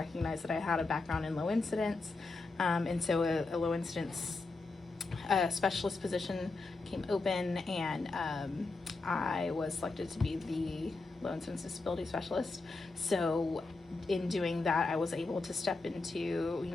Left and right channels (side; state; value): right; quieter; 3.6 dB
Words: that I had a background in low incidence, and so a low incidence specialist position came open, and I was selected to be the low incidence disability specialist. So in doing that, I was able to step into